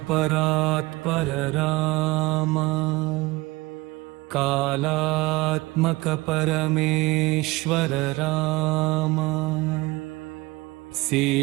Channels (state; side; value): quieter; left; 21.6 dB